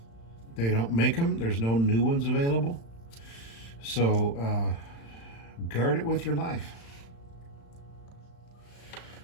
They don't make them. There's no new ones available. So guard it with your life.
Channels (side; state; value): right; late; 35 ms